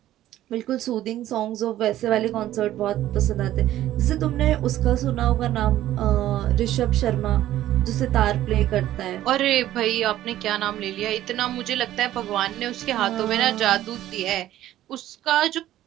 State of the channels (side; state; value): left; quieter; 13.5 dB